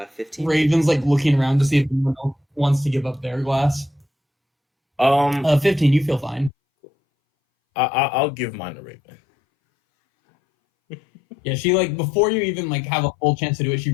15. Raven's like looking around to see if anyone else wants to give up their glass. 15. You feel fine. I'll give mine to Raven. Yeah, she before you even have a full chance to do it, she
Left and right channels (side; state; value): right; drops out; at 6.5 s